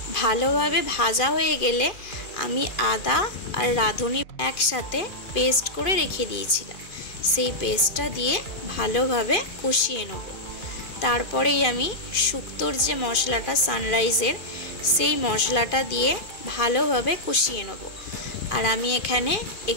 ভালোভাবে ভাজা হয়ে গেলে আমি আদা আর রাঁধুনি একসাথে পেস্ট করে রেখে দিয়েছিলাম, সেই পেস্টটা দিয়ে ভালোভাবে কষিয়ে নেব। তারপরেই আমি শুক্তোর যে মশলাটা সানরাইজের সেই মশলাটা দিয়ে ভালোভাবে কষিয়ে নেব। আর আমি এখানে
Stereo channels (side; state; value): right; late; 2.4 ms